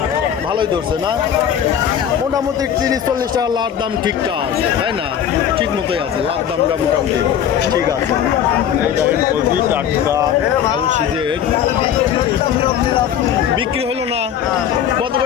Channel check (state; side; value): quieter; right; 9.3 dB